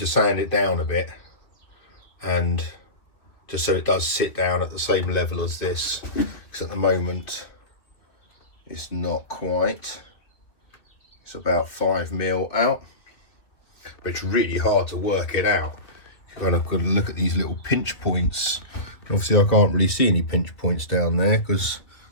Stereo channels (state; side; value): late; right; 2.8 ms